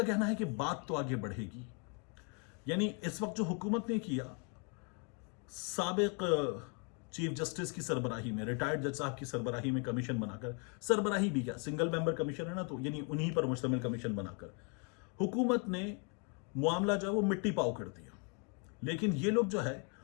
कहना है कि बात तो आगे बढ़ेगी। यानी इस वक्त जो हुकूमत ने किया, साबिक चीफ जस्टिस की सरबराही में, रिटायर्ड जज साहब की सरबराही में कमीशन बनाकर, सरबराही भी क्या, सिंगल मेंबर कमीशन है ना, तो यानी उन्हीं पर मुश्तमिल कमीशन बनाकर हुकूमत ने मामला जो है वो मिट्टी पाव कर दिया। लेकिन ये लोग जो है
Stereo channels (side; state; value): right; quieter; 36.9 dB